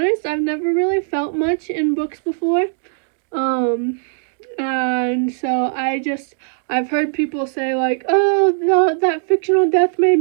I've never really felt much in books before, and so I've heard people say, like, oh, that fictional death made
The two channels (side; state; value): left; silent; 60 dB below the other